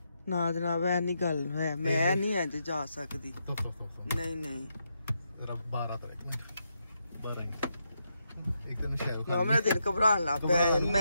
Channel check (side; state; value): both; inverted; correlation -0.82